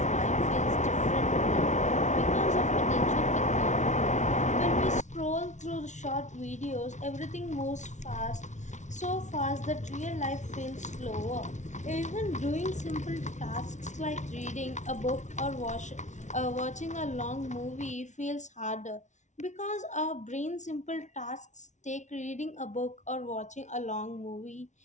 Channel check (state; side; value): late; right; 0.35 ms